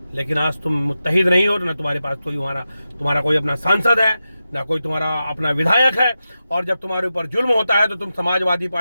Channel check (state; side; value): inverted; both; correlation -0.91